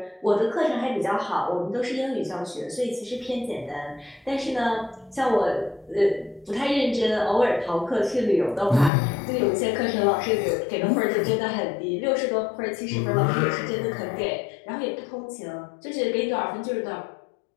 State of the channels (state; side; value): drops out; right; at 8.9 s